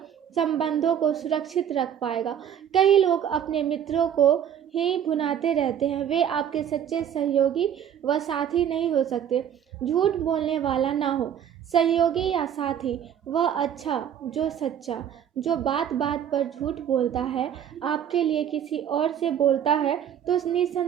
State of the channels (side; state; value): left; quieter; 9.3 dB